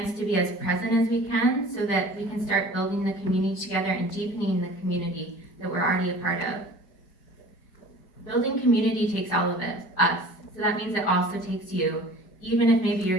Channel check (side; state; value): right; late; 5.1 ms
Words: to be as present as we can so that we can start building the community together and deepening the community that we're already a part of. Building community takes all of us. So that means it also takes you, even if maybe